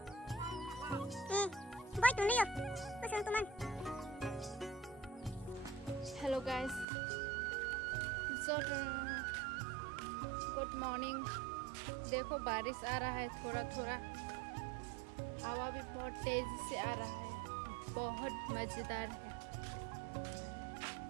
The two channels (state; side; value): drops out; left; at 6.9 s